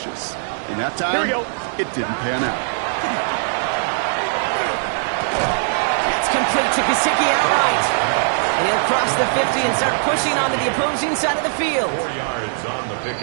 And that time, it didn't pan out. That's complete to Gesicki outright. And he'll cross the 50 and start pushing onto the opposing side of the field. 4 yards on the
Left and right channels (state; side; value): silent; left; digital silence